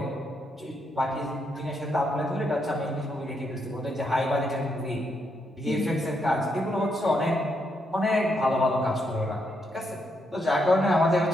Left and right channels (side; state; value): both; normal; correlation 0.78